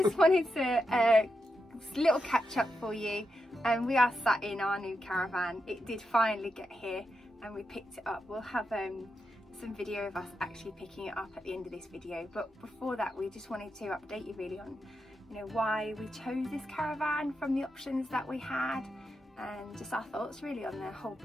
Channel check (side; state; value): both; normal; correlation 0.86